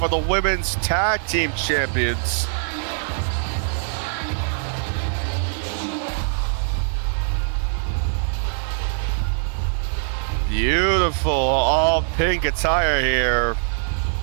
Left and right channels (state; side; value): silent; left; 64 dB below the other